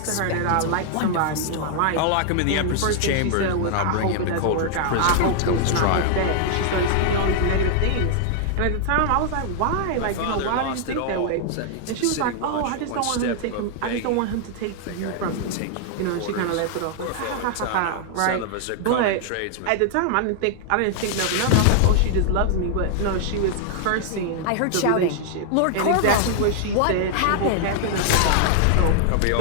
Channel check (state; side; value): different; both; correlation -0.01